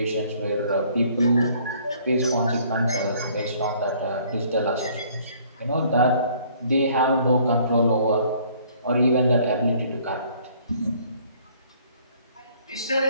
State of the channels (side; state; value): both; inverted; correlation -0.59